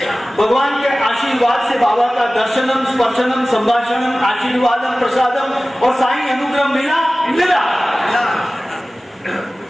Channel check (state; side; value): normal; both; correlation 0.97